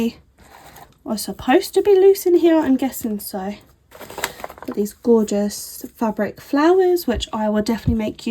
are supposed to be loose in here. I'm guessing so. Got these gorgeous fabric flowers, which I will definitely make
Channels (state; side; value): identical; both; correlation 1.00